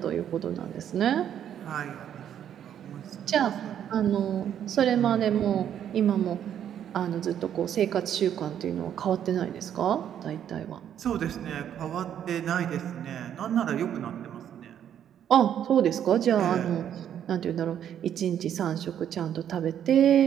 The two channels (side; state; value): left; quieter; 9.7 dB